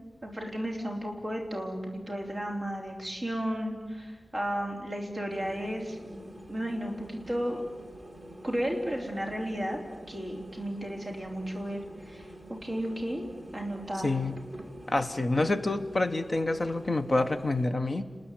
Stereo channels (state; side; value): normal; both; correlation 0.94